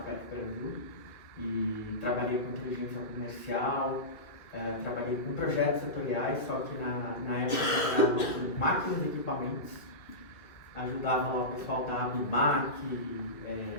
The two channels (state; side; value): late; right; 1.9 ms